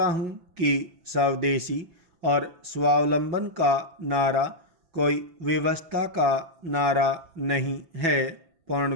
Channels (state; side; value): late; left; 6.0 ms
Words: हूँ कि स्वदेशी और स्वावलंबन का नारा कोई व्यवस्था का नारा नहीं है पूर्ण